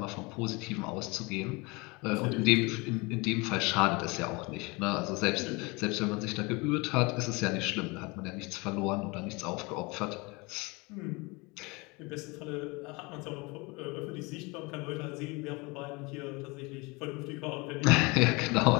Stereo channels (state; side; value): quieter; right; 26.4 dB